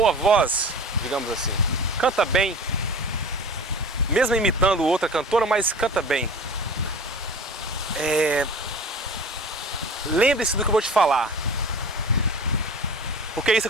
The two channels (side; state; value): both; normal; correlation 0.38